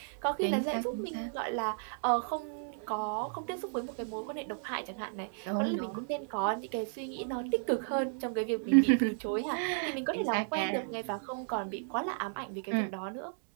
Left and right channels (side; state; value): left; silent; 55 dB below the other